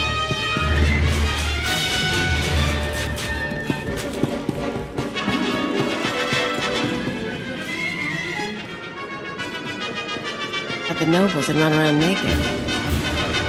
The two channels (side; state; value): both; identical; correlation 1.00